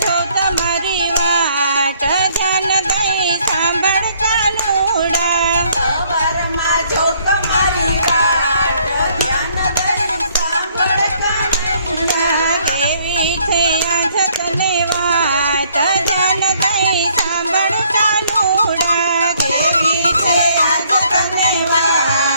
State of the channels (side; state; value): both; inverted; correlation -0.64